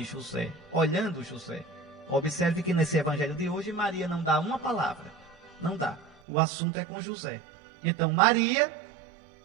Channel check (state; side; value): drops out; left; at 6.2 s